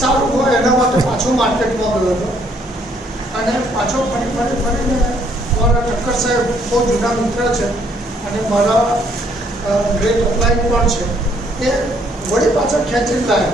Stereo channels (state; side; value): normal; both; correlation 0.67